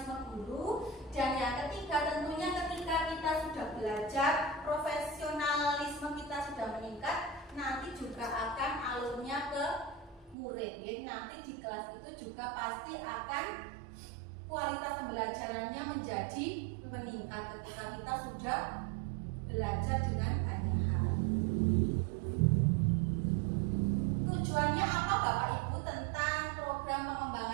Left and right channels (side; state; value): left; drops out; at 10.4 s